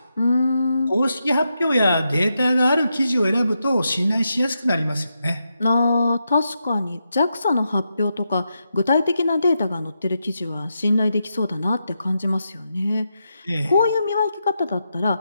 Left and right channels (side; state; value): both; inverted; correlation -0.85